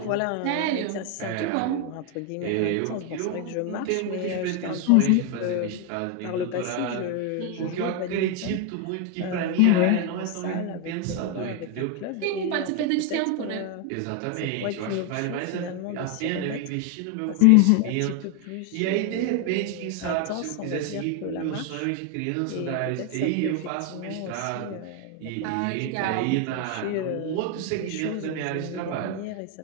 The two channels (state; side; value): different; both; correlation 0.01